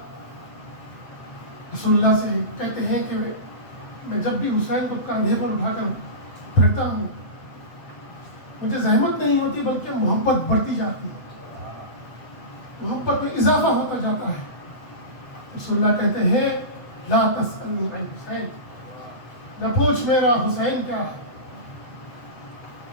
رسول اللہ سے کہتے ہیں کہ میں جب بھی حسین کو کندھے پر اٹھا کر پھرتا ہوں مجھے زحمت نہیں ہوتی بلکہ محبت بڑھتی جاتی ہے، محبت میں اضافہ ہوتا جاتا ہے. رسول اللہ کہتے ہیں لا تسألنی عن حسین، نہ پوچھ میرا حسین کیا ہے.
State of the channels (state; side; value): late; right; 8.0 ms